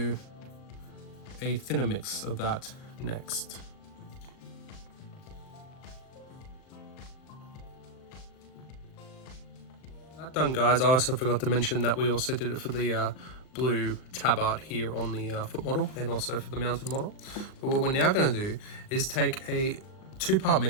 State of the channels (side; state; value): right; late; 38 ms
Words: a thinner mix of that next. That done, guys. I also forgot to mention that we also did it for the blue tabard here on the foot model, and also for the mounted model. But what we're now going to do is take a 2-part